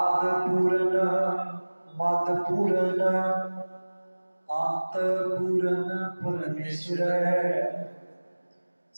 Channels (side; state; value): both; inverted; correlation -1.00